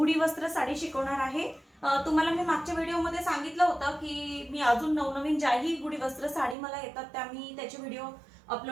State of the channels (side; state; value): left; drops out; at 6.6 s